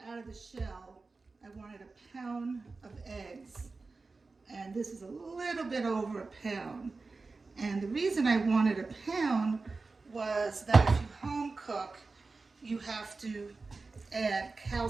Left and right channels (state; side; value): quieter; left; 3.9 dB